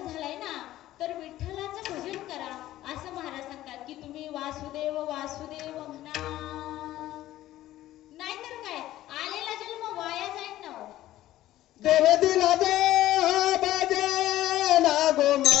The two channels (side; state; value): right; quieter; 14.6 dB